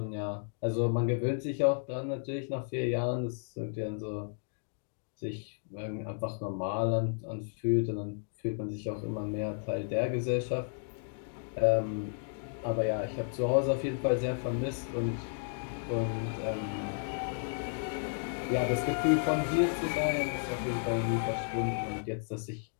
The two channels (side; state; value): right; silent; digital silence